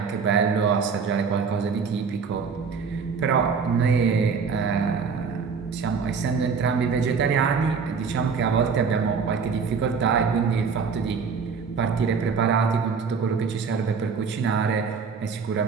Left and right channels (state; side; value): quieter; left; 5.7 dB